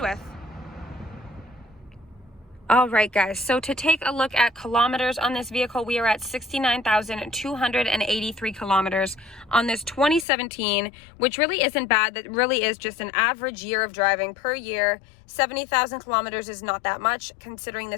with. All right, guys, so to take a look at kilometers on this vehicle, we are at 69,283 kilometers on this 2017, which really isn't bad. That really is just an average year of driving per year. 70,000 kilometers is not that much, considering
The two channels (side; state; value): right; drops out; at 10.2 s